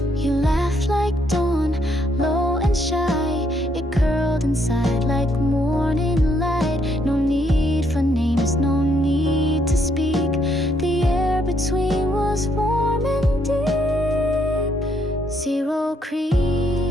You laughed like dawn, low and shy. It curled inside like morning light. No need for names, no need to speak. The air between was warm and deep. Zero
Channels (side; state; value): both; normal; correlation 0.72